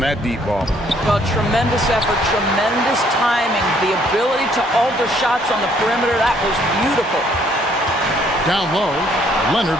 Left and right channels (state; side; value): normal; both; correlation 0.65